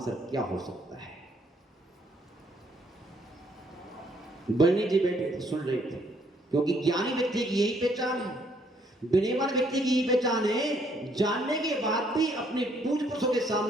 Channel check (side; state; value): both; normal; correlation 0.68